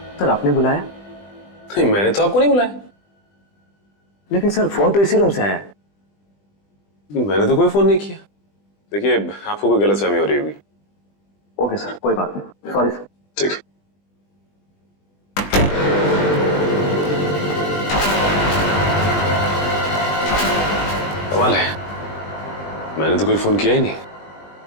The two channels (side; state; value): right; late; 20 ms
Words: सर आपने बुलाया? नहीं, मैंने तो आपको नहीं बुलाया। लेकिन सर फोन तो इसी रूम से आया है। मैंने तो कोई फोन नहीं किया। देखिए, आपको कोई गलतफहमी हो रही होगी। ओके सर, कोई बात नहीं, सॉरी सर। ठीक है। कमाल है, मैंने तो कोई फोन किया ही नहीं,